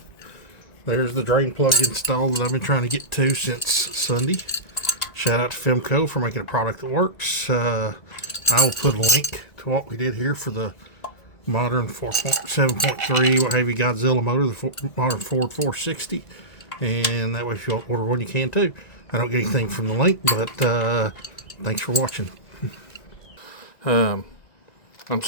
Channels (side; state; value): right; late; 1.9 ms